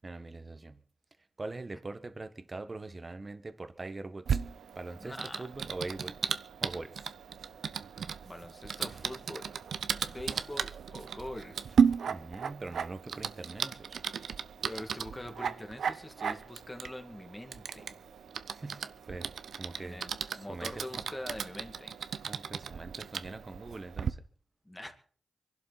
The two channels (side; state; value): left; quieter; 5.6 dB